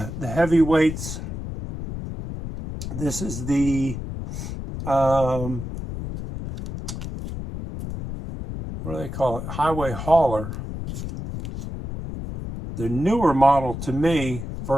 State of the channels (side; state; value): left; noise; rumble, 7 dB below the sound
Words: This is the what do they call it? Highway hauler. the newer model to me